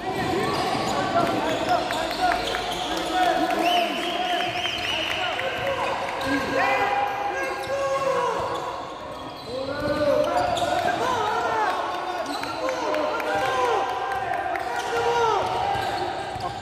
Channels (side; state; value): both; identical; correlation 1.00